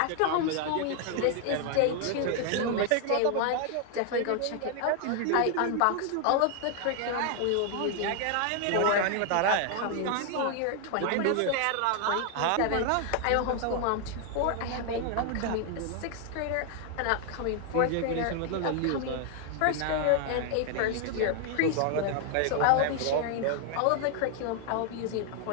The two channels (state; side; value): different; both; correlation 0.00